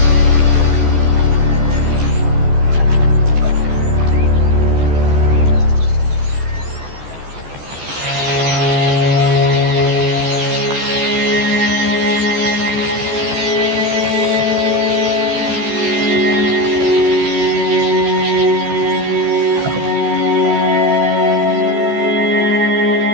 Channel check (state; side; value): late; left; 14 ms